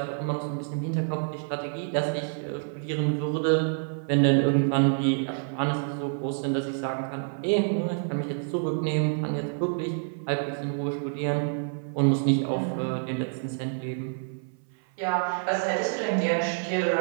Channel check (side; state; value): left; silent; 57 dB below the other